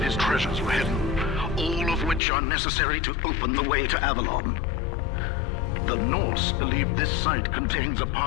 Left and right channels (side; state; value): right; drops out; at 2.2 s